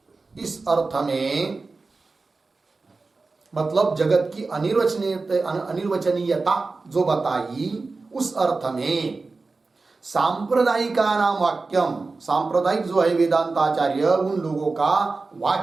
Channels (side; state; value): left; quieter; 3.8 dB